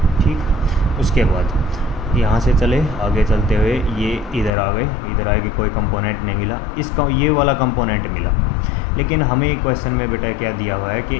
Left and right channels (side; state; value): right; drops out; at 4.5 s